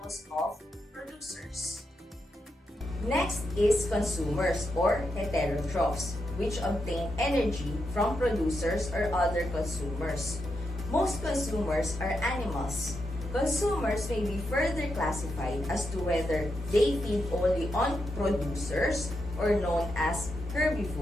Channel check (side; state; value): both; normal; correlation 0.84